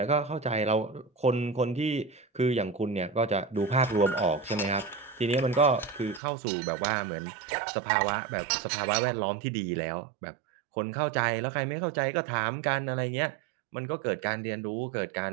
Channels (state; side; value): drops out; left; at 6.2 s